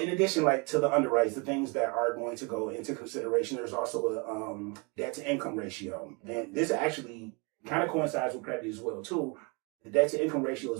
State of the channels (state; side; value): quieter; left; 30.7 dB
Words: addition, like to the underwrites, the things that are going to go into consideration, there's also a debt to income ratio. And this actually kind of coincides with credit as well too. The debt to income ratio